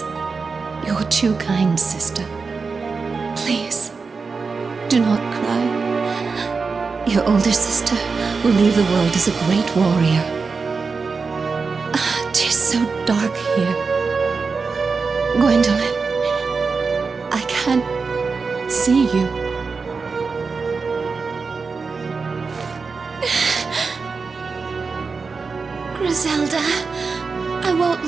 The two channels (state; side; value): quieter; left; 4.7 dB